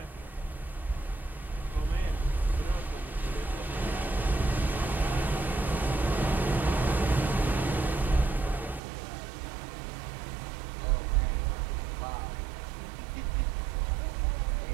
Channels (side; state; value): left; drops out; at 8.8 s